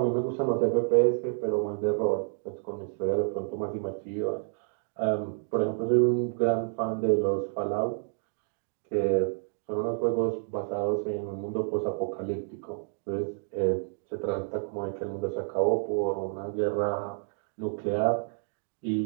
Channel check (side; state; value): left; silent; digital silence